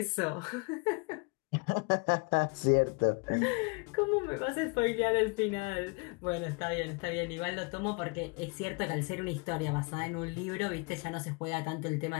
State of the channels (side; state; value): right; quieter; 30.2 dB